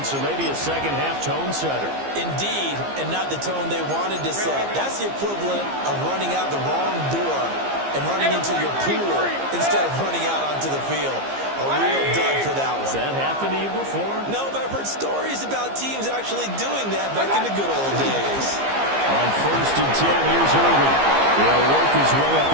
maybe a second-half tone setter. Indeed, and not the tone they wanted to set. That's the equivalent of running out the wrong door and running into your pool instead of running out onto the field. A real dud for that one. Has that happened to you before? No, but I've heard stories about teams actually doing that back in the good old days. On 1st and 10, here's Irvin. He'll work his way up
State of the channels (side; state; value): left; late; 15 ms